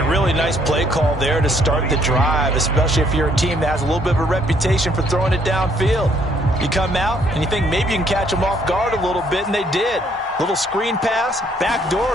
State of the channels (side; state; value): both; normal; correlation 0.66